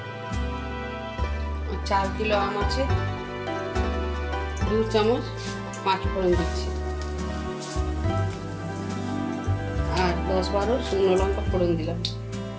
4 কিলো আম আছে, 2 চামচ 5 ফোড়ন দিচ্ছি আর 10-12 শুকনো লঙ্কা ফোড়ন দিলাম।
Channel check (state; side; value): identical; both; correlation 1.00